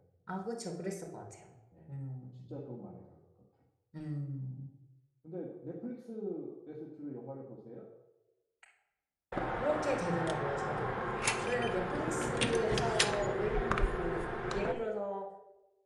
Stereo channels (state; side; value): identical; both; correlation 1.00